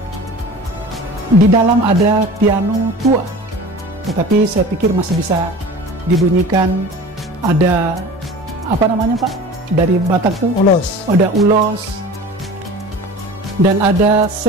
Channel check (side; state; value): both; normal; correlation 0.39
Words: Di dalam ada piano tua, tetapi saya pikir masih bisa dibunyikan. Ada apa namanya, Pak? Dari Batak tuh? Ulos. Ada ulos. Dan ada